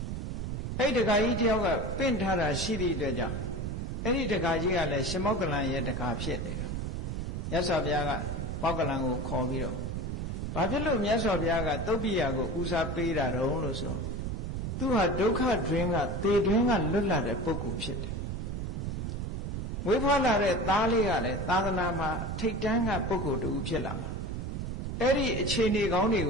အဲ့ဒကာကြီးတယောက်ကပင့်ထားတာရှိသည့်အတွက်ကြောင့်အဲ့ဒီဒကာကြီးကလည်းရှင်မောက္ကလန်ရဲ့ဒကာဖြစ်နေတာမြတ်စွာဘုရားကမောက္ကလန်ကိုခေါ်ပြီးတော့ဘာဖြစ်လို့မြတ်စွာဘုရားကသုတ်ပိယကိုဦးစားပေးတာတုံးလို့ဆိုသူဟာဒုက္ခတွင်ကသေတွင်ကလွတ်လာတဲ့ပုဂ္ဂိုလ်ဖြစ်တယ်မွေးဖွားလာတဲ့သားလေးကလည်းသာသနာမှာထိတ်တန်းကပုဂ္ဂိုလ်တူဖြစ်လာမှာ အဲ့ဒီအခြေအနေကောင်းတွေ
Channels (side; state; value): right; noise; rumble, 3 dB below the sound